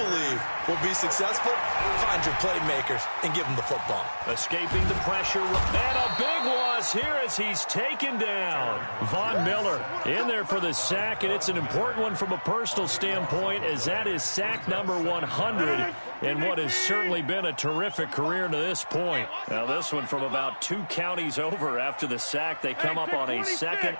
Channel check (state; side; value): inverted; both; correlation -1.00